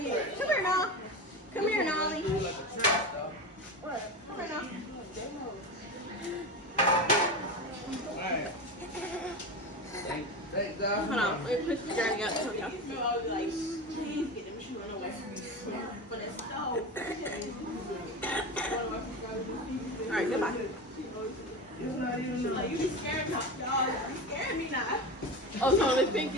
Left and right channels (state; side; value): normal; both; correlation 0.24